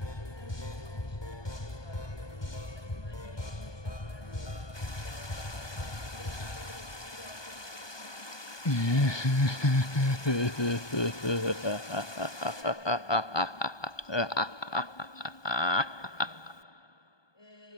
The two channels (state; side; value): late; right; 1.2 ms